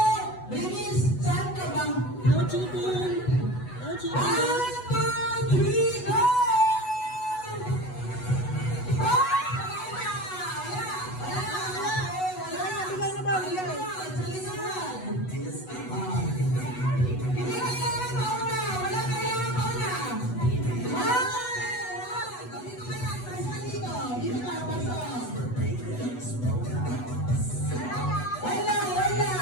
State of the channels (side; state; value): right; late; 8.1 ms